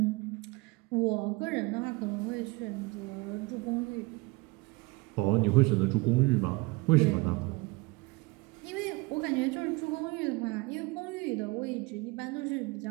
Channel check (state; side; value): quieter; left; 24.5 dB